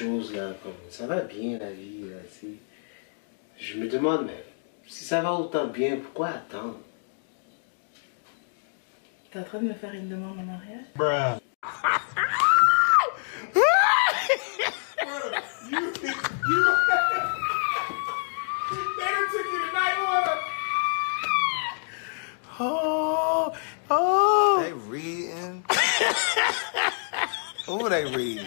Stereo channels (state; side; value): silent; right; digital silence